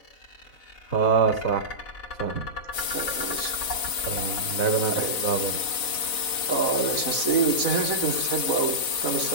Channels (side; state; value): right; late; 4.0 ms